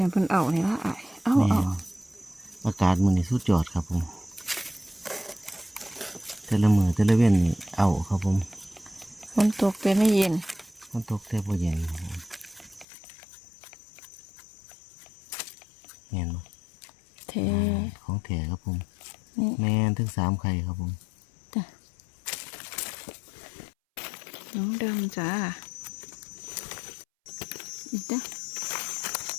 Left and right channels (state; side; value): drops out; right; at 12.9 s